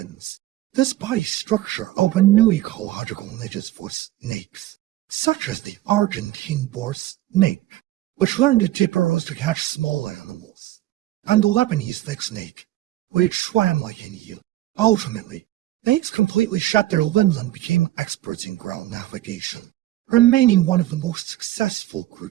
This body structure opened new ecological niches for snakes, such as the Argentine boar snake, which learned to dip burrows to catch small animals, and the Lebanese thick snake, which swam like an eel. Ultimately, snakes completely shed their limbs and became experts in ground navigation, remaining one of the most successful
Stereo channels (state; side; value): quieter; left; 15.3 dB